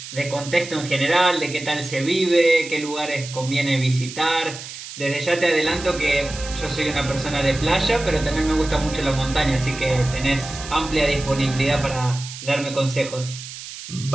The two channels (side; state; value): right; noise; hiss, 12 dB below the sound